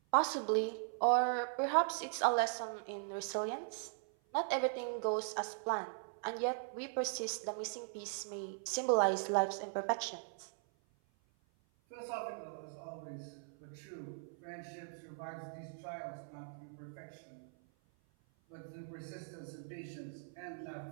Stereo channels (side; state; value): left; silent; 51 dB below the other